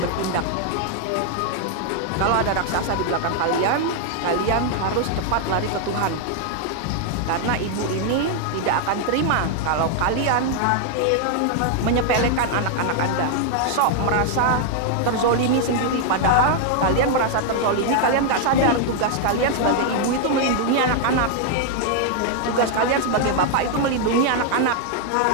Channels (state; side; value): different; both; correlation 0.00